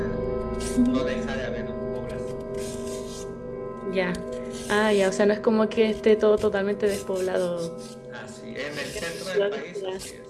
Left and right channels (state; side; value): identical; both; correlation 1.00